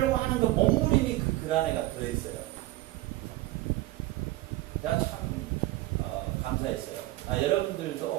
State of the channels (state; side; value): quieter; left; 17.8 dB